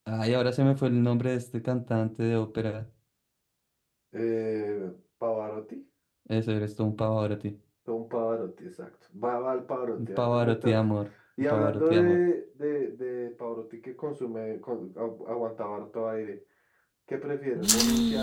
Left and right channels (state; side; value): identical; both; correlation 1.00